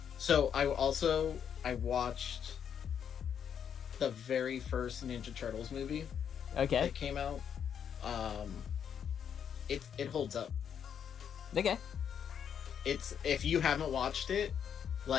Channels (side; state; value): right; quieter; 8.2 dB